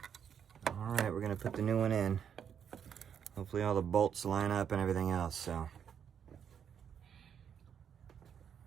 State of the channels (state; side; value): quieter; left; 8.1 dB